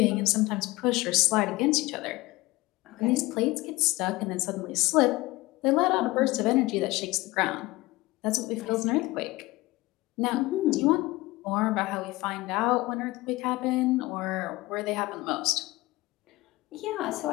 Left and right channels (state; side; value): quieter; right; 20.3 dB